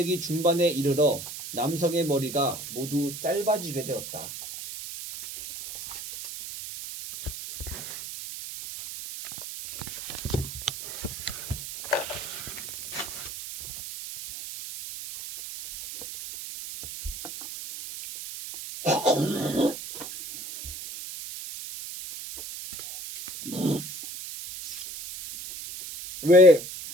중반에 이르러 남성의 머리가 모두 짧아지게 되었다. 왜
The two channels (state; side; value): noise; right; hiss, 9 dB below the sound